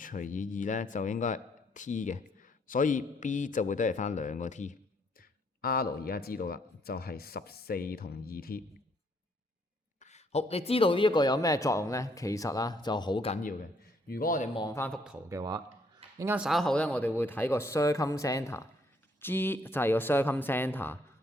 以2咧就應該係 T 嘅，所以 B 就會得嚟翻2個 T。R 而家知道啦，就係14同2T。好，你知道呢一個有咩作用咧？其實就好緊要嘅。如果我哋望翻幅圖嘅話，陣間稍後咧我哋會睇個 circumcenter，G 就係個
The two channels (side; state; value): both; normal; correlation 0.68